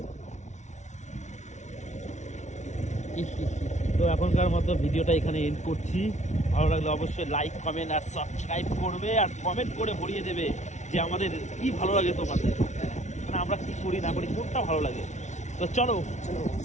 তো এখনকার মতো ভিডিওটা এখানে এন্ড করছি। ভালো লাগলে অবশ্যই লাইক, কমেন্ট আর সাবস্ক্রাইব করবে, আর কমেন্ট করে ভরিয়ে দেবে যে আমাদের কি ভালো লাগে তোমাদের, মানে আমরা কি করি না করি, কোনটা ভালো লাগে। তো চলো,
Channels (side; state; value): right; late; 0.34 ms